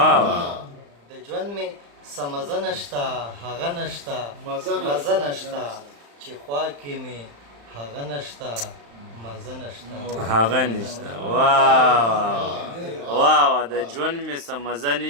د ژوند مې څه مزه نشته هغه نشته مزه نشته چې خوا کې مې هغه نشته مزه نشته هغه نشته واو واو د ژوند مې څه مزه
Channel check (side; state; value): left; late; 35 ms